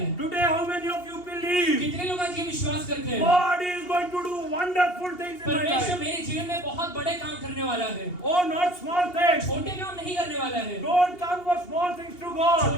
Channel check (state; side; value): late; right; 2.8 ms